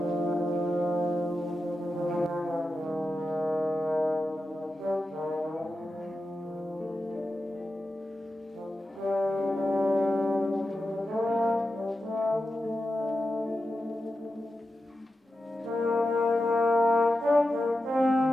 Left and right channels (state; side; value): normal; both; correlation 0.91